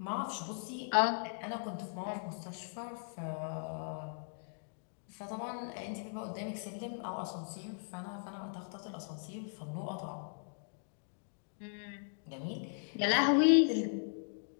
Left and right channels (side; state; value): right; silent; digital silence